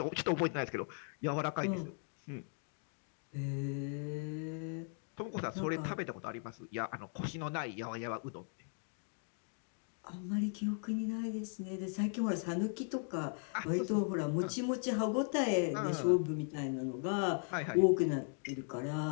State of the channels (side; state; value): right; silent; 52 dB below the other